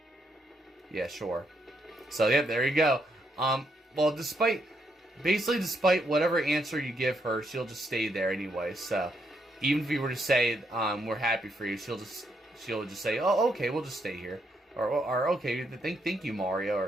Yeah, sure. So, yep, there you go. Well, despite whatever answer you give her, she'll just stay there anyway. So, even if you were to say, we're happy for you, she'll just say, oh, okay, we'll just stay here. Or okay, thank you, Mario,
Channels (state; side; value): normal; both; correlation 0.77